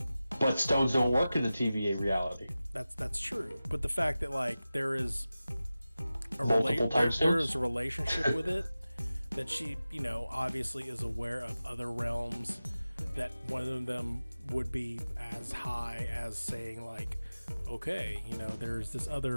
But stones don't work in the TVA reality. That's true. But the fact that like there is a there is a relationship with it, that she, obviously is aware of other realms, that one of them would be as high as saying like, okay, there's this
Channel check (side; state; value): both; inverted; correlation -0.95